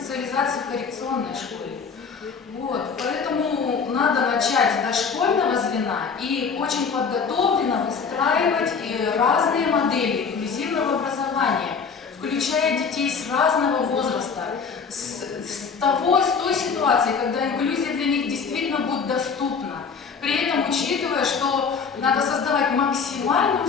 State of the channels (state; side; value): quieter; right; 5.7 dB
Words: в коррекционной школе. Вот, поэтому надо начать с дошкольного звена и очень подготовленно выстраивать разные модели инклюзивного образования, включая детей с разного возраста, с той ситуации, когда инклюзия для них действительно будет доступна. При этом учитывая, что надо создавать максимальные